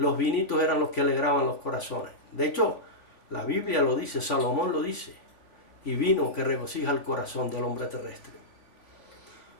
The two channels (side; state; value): right; late; 3.5 ms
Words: vinitos eran los que alegraban los corazones. De hecho, La Biblia lo dice, Salomón lo dice. Y vino que regocija el corazón del hombre terrestre.